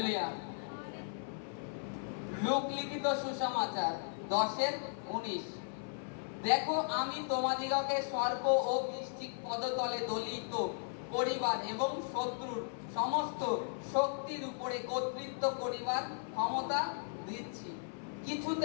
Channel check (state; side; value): silent; right; 53 dB below the other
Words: লূক লিখিত সুসমাচার 10:19। দেখো, আমি তোমাদিগকে সর্প ও বৃশ্চিক পদতলে দলিত করিবার এবং শত্রুর সমস্ত শক্তির উপরে কর্তৃত্ব করিবার ক্ষমতা দিচ্ছি,